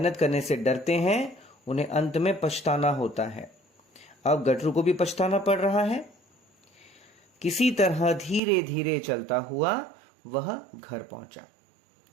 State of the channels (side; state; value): left; drops out; at 8.4 s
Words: करने से डरते हैं उन्हें अंत में पछताना होता है। अब गटरू को भी पछताना पड़ रहा है। किसी तरह धीरे धीरे चलता हुआ वह घर पहुंचा।